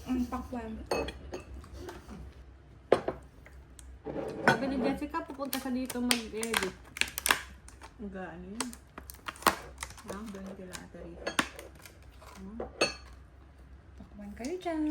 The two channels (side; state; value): both; identical; correlation 1.00